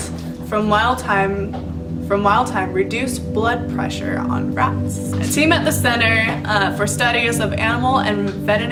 from wild thyme reduced blood pressure on rats. A team at the Center for Studies of Animal and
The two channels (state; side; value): identical; both; correlation 1.00